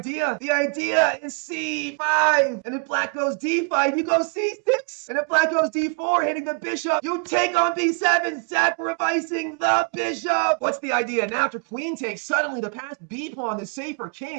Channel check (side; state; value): left; quieter; 36.0 dB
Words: The idea is c5. And if black goes d5, you go c6. And if black goes d4, hitting the bishop, you take on b7, sacrificing the bishop. What's the idea? Now after queen takes, suddenly the passed b pawn is safe for